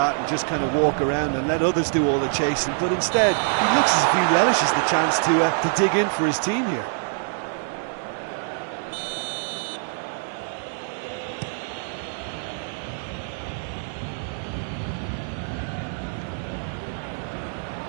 and just kind of walk around and let others do all the chasing, but instead he looks as if he relishes the chance to dig in for his team here.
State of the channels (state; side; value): silent; left; 62 dB below the other